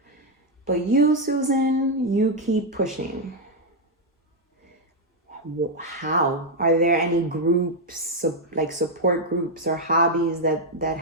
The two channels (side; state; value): both; normal; correlation 0.00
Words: But you, Susan, you keep pushing. How? Are there any groups, like support groups or hobbies that